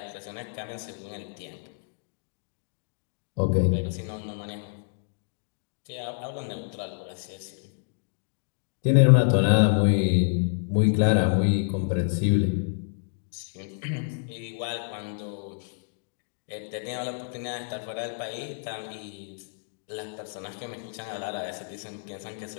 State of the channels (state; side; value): silent; right; digital silence